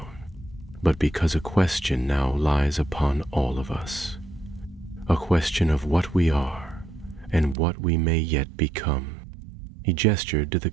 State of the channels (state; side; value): drops out; left; at 7.6 s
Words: but because a question now lies upon all of us. A question of what we are, and what we may yet become." He gestured to the